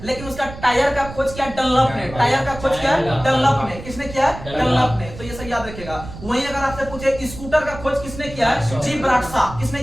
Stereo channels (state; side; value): noise; right; rumble, 13 dB below the sound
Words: लेकिन उसका टायर का खोज किया डनलप ने, टायर का खोज किया डनलप ने, किसने किया है, डनलप ने। तो ये सब याद रखिएगा। वहीं अगर आपसे पूछे स्कूटर का खोज किसने किया है, जी ब्राटशा, किसने